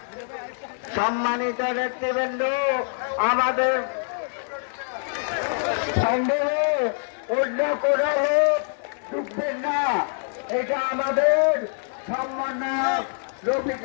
সম্মানিত নেতৃবৃন্দ, আমাদের সন্দেহে অন্য কোনো লোক ঢুকবেন না, এটা আমাদের সম্মানক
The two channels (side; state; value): right; silent; 59 dB below the other